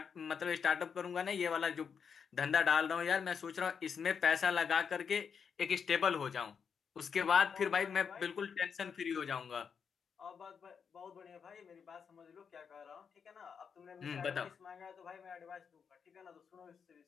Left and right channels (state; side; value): quieter; right; 6.6 dB